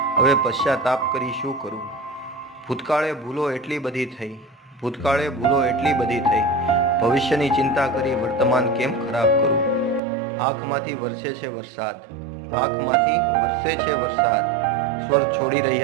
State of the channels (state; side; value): drops out; left; at 10.0 s